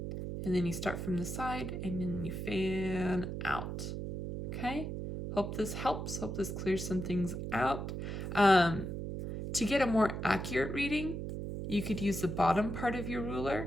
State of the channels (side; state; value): right; noise; hum, 5 dB below the sound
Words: and then you start from the side and then you fan out. Okay? Hope this helps. Hope this clears some things out. To get a more accurate reading, you could use the bottom part of your ruler,